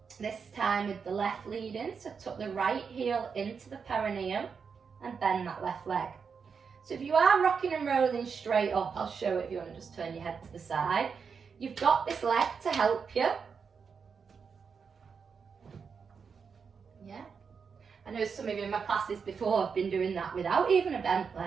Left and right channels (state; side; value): quieter; left; 5.9 dB